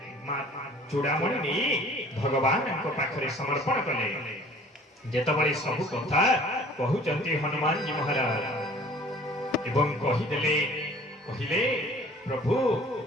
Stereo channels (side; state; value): both; normal; correlation 0.50